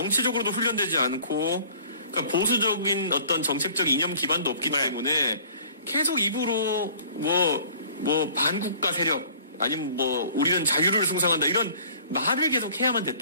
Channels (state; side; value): inverted; both; correlation -0.51